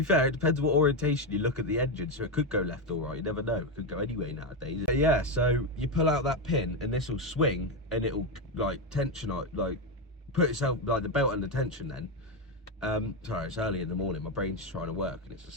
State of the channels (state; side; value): normal; both; correlation 0.08